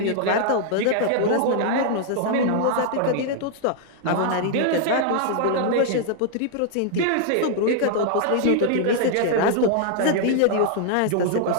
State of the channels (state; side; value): different; both; correlation 0.00